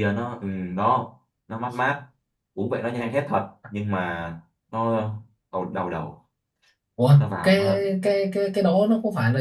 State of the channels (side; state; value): both; identical; correlation 1.00